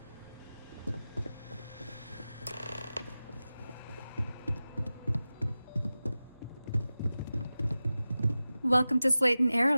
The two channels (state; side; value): inverted; both; correlation -0.96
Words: Welcome to Slayton